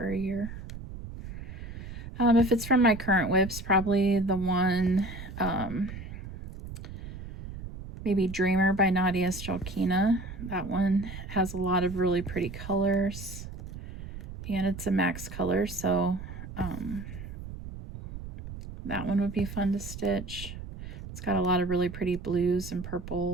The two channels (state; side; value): noise; right; rumble, 11 dB below the sound